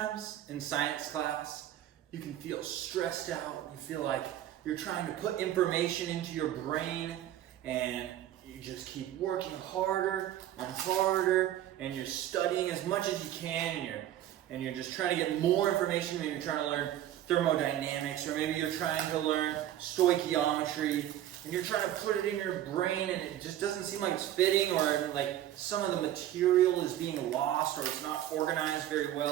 in science class, you can feel stressed out. You feel like you're trying to put information into your brain and you just keep working harder and harder and you're studying as much as you can and you're just trying to get more information. Maybe you're trying to learn thermodynamics, or maybe you're trying to learn stoichiometry and you're trying to put it in your brain and it just doesn't seem like it's fitting, or like some of the material is being lost or it's not organized very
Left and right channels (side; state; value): left; quieter; 12.4 dB